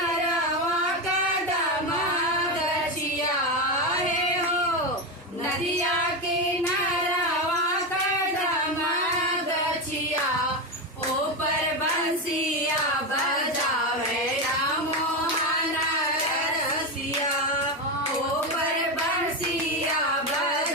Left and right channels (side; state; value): both; normal; correlation 0.13